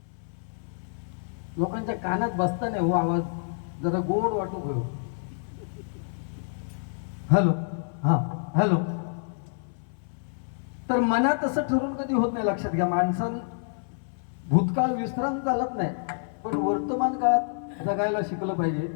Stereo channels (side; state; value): right; silent; 58 dB below the other